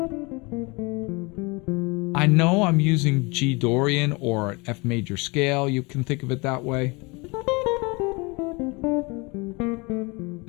I know I'm using G Dorian or an F major scale. You can think of it that way. And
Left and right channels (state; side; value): quieter; right; 27.2 dB